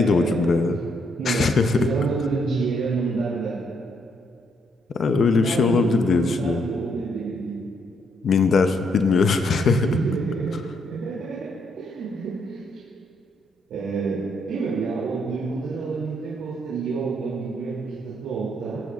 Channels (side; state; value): both; normal; correlation 0.73